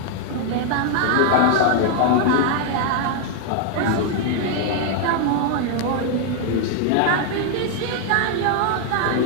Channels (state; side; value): different; both; correlation 0.00